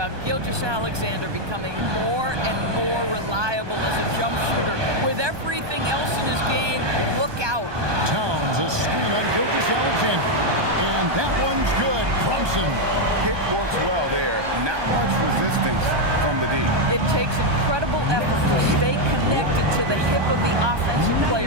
Gilgeous-Alexander becoming more and more reliable as a jump shooter. With everything else in his game, look out. Towns a screen on Gilgeous-Alexander. And that one's good. Brunson. Pick works well there. Not much resistance from the D. It takes incredible effort to stay connected to the hip of the offensive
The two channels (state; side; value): late; left; 1.2 ms